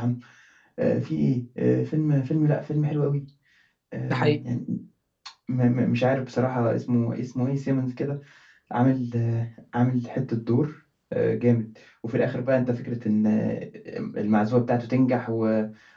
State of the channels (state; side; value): identical; both; correlation 1.00